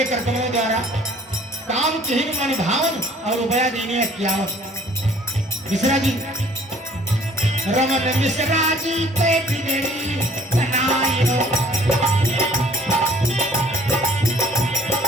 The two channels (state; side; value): normal; both; correlation 0.55